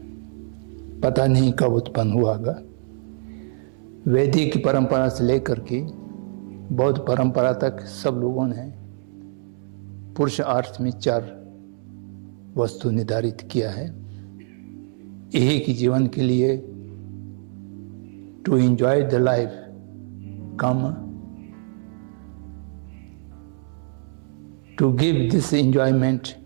पता नहीं कब उत्पन्न हुआ होगा। वैदिक परंपरा से लेकर के बौद्ध परंपरा तक सब लोगों ने पुरुषार्थ में 4 वस्तु निर्धारित किया है। एक ही जीवन के लिए to enjoy the life, come to give this enjoyment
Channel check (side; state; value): left; silent; 62 dB below the other